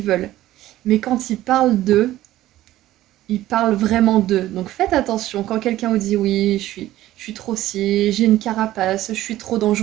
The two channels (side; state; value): left; quieter; 14.7 dB